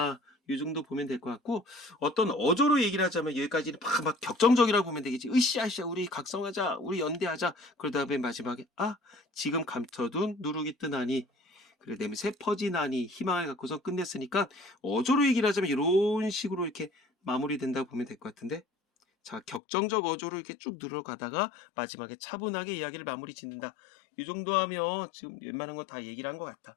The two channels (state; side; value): drops out; right; at 19.6 s